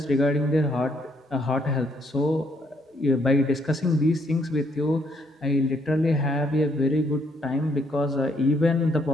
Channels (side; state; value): both; normal; correlation 0.71